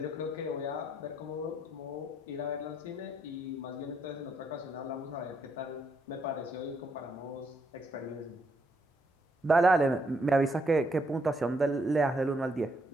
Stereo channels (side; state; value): both; normal; correlation 0.75